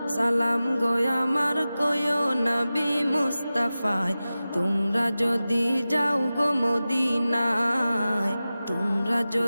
সালাম গয় আমার কয়ো নবী মুস্তাফায়। তোমরা যদি যাও গো মদিনায়, তোমরা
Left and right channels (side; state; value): both; inverted; correlation -0.96